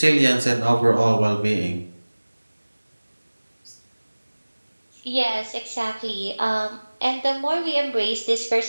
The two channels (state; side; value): inverted; both; correlation -1.00